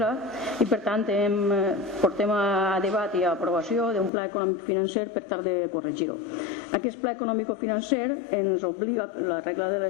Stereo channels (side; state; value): right; drops out; at 4.1 s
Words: i per tant portem a debat i a aprovació d'un pla econòmic financer per tal de corregir-ho. Aquest pla econòmic financer ens obliga, la regla de la